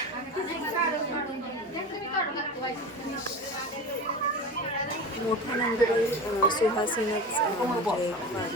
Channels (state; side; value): normal; both; correlation 0.29